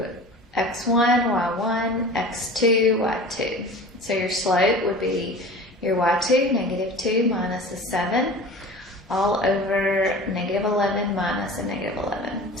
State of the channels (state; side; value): normal; both; correlation 0.38